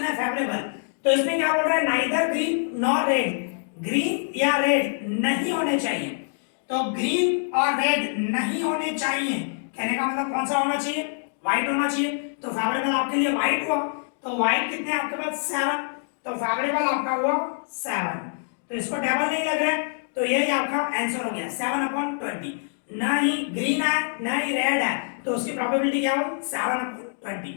है फेवरेबल, तो इसमें क्या बोल रहा है, neither green nor red, green या रेड नहीं होने चाहिए, तो ग्रीन और रेड नहीं होने चाहिए, कहने का मतलब कौन सा होना चाहिए, व्हाइट होना चाहिए, तो फेवरेबल आपके लिए व्हाइट हुआ, तो व्हाइट कितने आपके पास 7, तो फेवरेबल आपका हुआ 7, तो इसको डबल नहीं लग रहा है, तो यही आपका आंसर हो गया 7/20, ना ही ग्रीन है ना ही रेड है, तो उसकी प्रोबेबिलिटी क्या हो 7/20,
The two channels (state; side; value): silent; right; digital silence